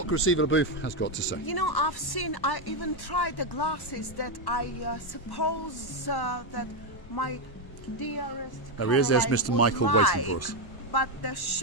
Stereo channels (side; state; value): right; late; 1.1 ms